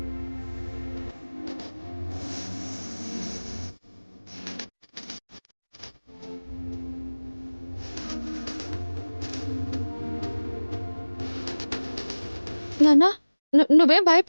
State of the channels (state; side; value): inverted; both; correlation -1.00